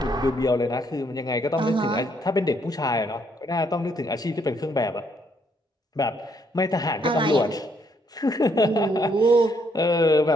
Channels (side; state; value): both; normal; correlation 0.71